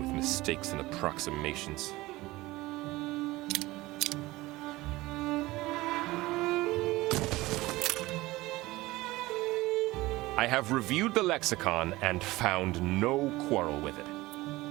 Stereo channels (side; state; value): left; quieter; 19.4 dB